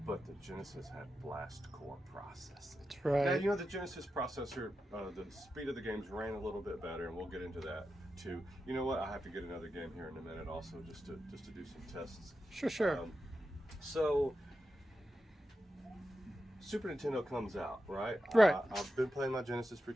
but the Genesis had blast core processing. That's right. Now, the Genesis processor, the speed of the games ran a little bit better, and we'll get into that too. You know what? I have to get another game here in a minute, also, just to do some tests. Sure. So, Super Nintendo comes out, right? Right. I've been playing my Genesis for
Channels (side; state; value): both; normal; correlation 0.90